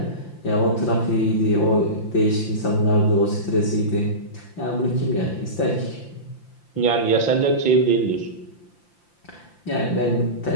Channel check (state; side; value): late; right; 5.8 ms